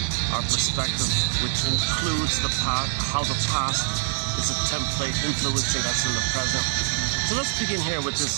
our perspective, which includes the past, how the past is a template influencing us in the present. So let's begin here with this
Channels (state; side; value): silent; left; 62 dB below the other